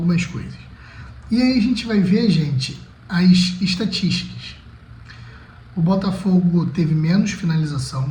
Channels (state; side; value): identical; both; correlation 1.00